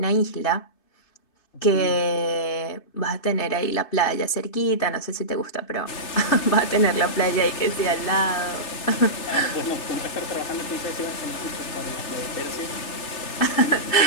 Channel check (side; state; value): right; late; 3.3 ms